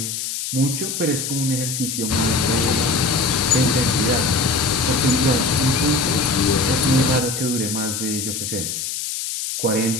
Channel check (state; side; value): noise; left; hiss, 4 dB below the sound